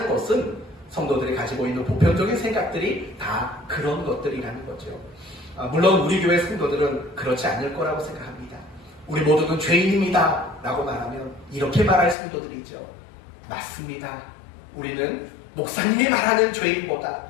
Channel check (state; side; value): drops out; right; at 12.2 s